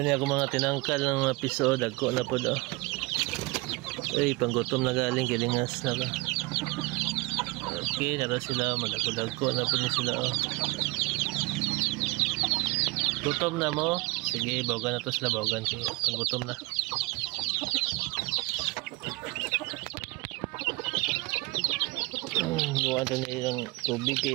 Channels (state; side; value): quieter; left; 23.6 dB